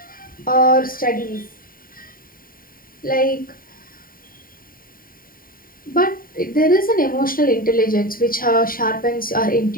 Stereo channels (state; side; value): late; right; 0.41 ms